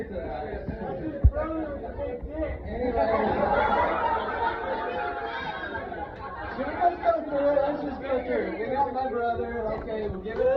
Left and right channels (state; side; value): identical; both; correlation 1.00